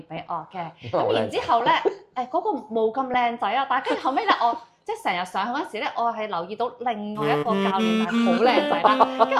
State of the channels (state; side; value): identical; both; correlation 1.00